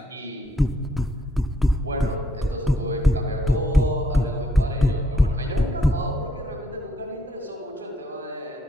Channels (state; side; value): normal; both; correlation 0.70